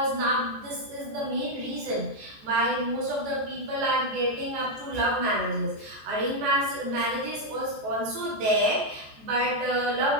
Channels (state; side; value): late; left; 14 ms